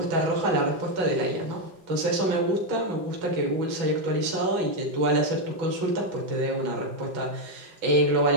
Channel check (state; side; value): late; left; 5.5 ms